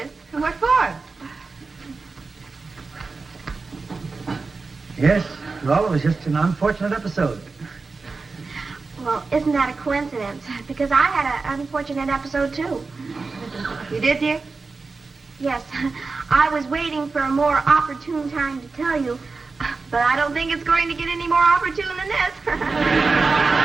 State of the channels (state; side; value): quieter; left; 4.1 dB